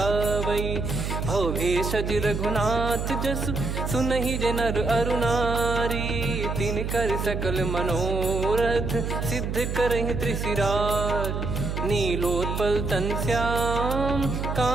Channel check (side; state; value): right; noise; hum, 3 dB below the sound